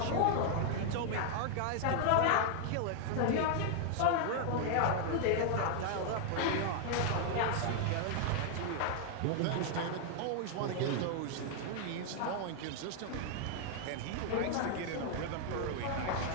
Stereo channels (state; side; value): different; both; correlation 0.00